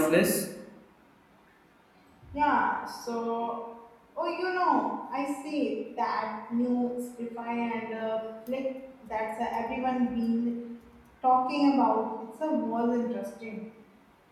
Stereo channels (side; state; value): both; identical; correlation 1.00